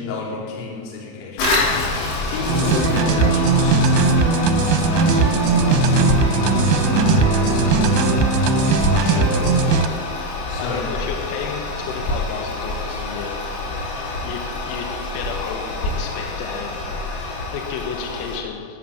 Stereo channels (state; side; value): late; right; 31 ms